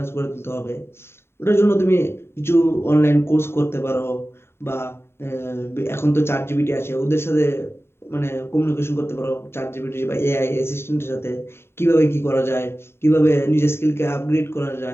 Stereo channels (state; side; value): late; right; 0.12 ms